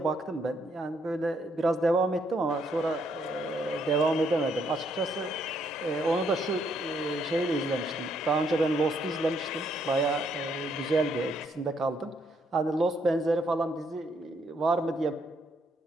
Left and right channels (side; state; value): both; normal; correlation 0.72